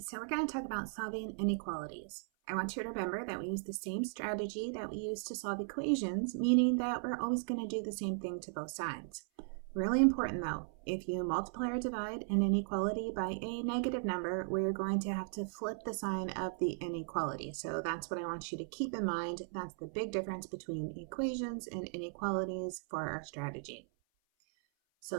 we're going to talk about solving inequalities. I want you to remember that we use the same strategy that we use to solve equations, meaning that we're always going to do the same thing to both sides. Really important though, if you multiply or divide an inequality by a negative number, we're going to have to flip the sign of the inequality. So that's what I want you to keep in mind. That's the big difference between equations and inequalities for our strategy. So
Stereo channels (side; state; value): left; silent; 53 dB below the other